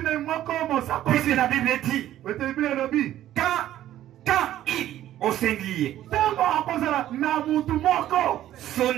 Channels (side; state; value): left; quieter; 12.8 dB